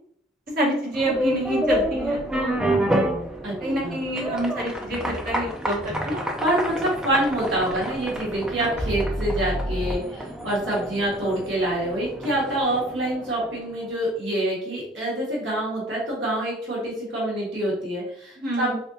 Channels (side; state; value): both; normal; correlation 0.54